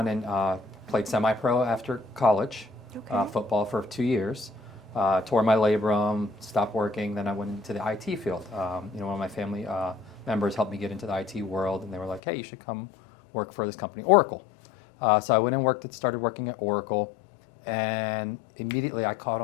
and played semi-pro after college, football for 2 years, tore my labrum, stopped working, then I went into the IT field. One of my family members helped me get into the IT world, and they were like, hey, you should come work for this company, Oracle. So I went and started working at Oracle, and immediately I caught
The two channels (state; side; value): drops out; right; at 12.2 s